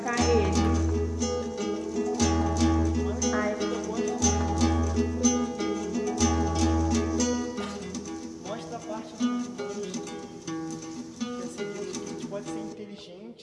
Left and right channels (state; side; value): identical; both; correlation 1.00